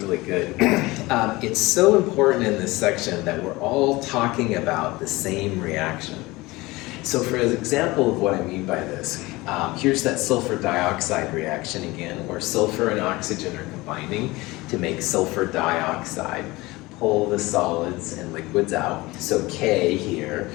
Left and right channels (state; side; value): quieter; right; 21.2 dB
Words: good, it's so important in this section that we're all talking about the same reaction. So for an example of what I mean by this, here's that sulfur dioxide reaction again, where sulfur and oxygen are combining to make sulfur dioxide. Pull the solids and liquids out. So K here